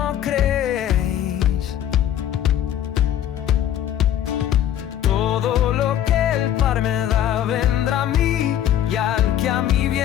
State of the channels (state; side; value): quieter; right; 11.0 dB